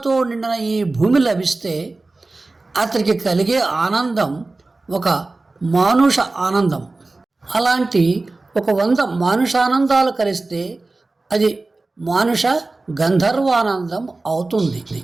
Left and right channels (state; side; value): quieter; left; 3.3 dB